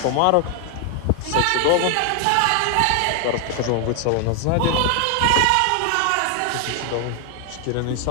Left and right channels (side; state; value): both; different; correlation 0.00